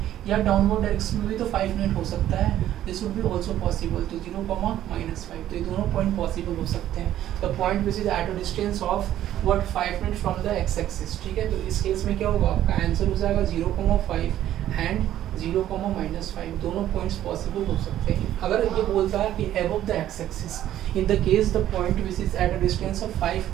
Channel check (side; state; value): left; quieter; 12.3 dB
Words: या डाउनवर्ड डायरेक्शन में भी तो 5 यूनिट हो सकता है, this would be also possible. तो 0,-5, तो ये दोनों पॉइंट पॉसिबल हो सकते हैं। The point which is eight a distance of what 5 unit from the x axis. ठीक है, तो इस केस में क्या होगा, आपका आंसर हो जाएगा 0,5 एंड 0,-5, दोनों पॉइंट्स पॉसिबल हो सकते हैं। अगर ये बोलता है कि above the x axis, in the case the point which is at a distance of 5